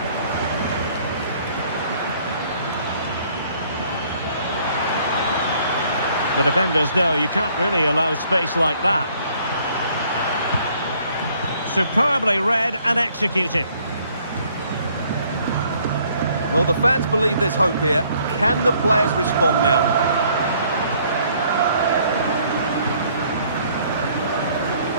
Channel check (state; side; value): inverted; both; correlation -0.62